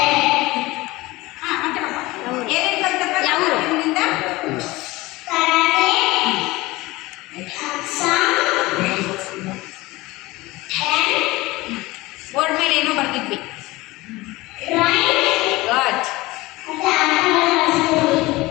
ಏನೇನು ಕಲ್ತಪ್ಪ ಯಾವ ನಿಮ್ಮಿಂದ ಬೋರ್ಡ್ ಮೇಲೆ ಏನೋ ಬರ್ತಿದ್ವಿ ಗುಡ್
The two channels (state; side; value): quieter; right; 20.4 dB